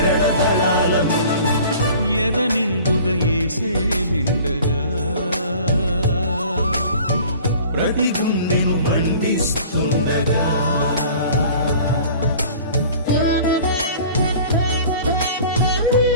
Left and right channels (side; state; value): both; inverted; correlation -0.46